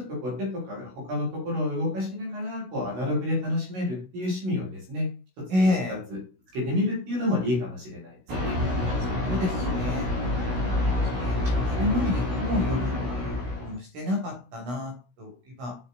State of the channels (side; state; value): left; late; 16 ms